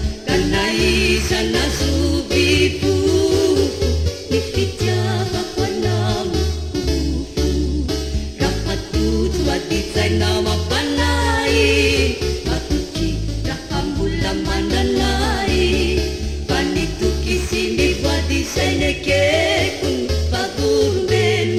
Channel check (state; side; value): identical; both; correlation 1.00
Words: ka naiza nazovifofo ny fitiavako anao lokorofo raha toto adintsaina mampanay matoky raha mbola mananay fa nitoky sy ny voadisainekeko